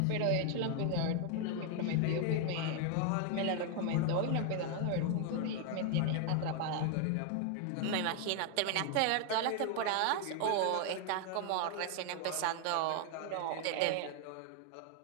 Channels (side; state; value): both; different; correlation 0.00